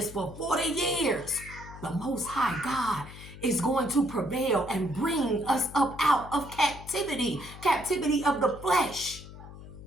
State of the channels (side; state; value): left; noise; hum, 15 dB below the sound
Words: for 40 years, the Most High God is going to prevail and bring us up out of captivity of the flesh,